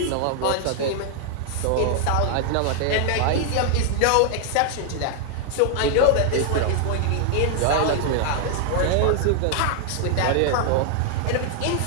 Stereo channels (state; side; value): different; both; correlation 0.00